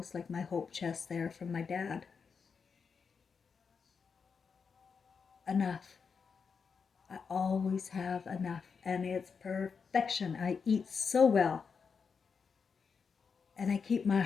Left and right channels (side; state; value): right; quieter; 5.7 dB